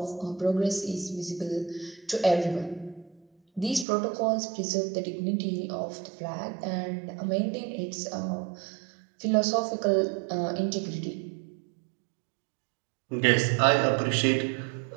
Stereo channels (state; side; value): drops out; left; at 3.9 s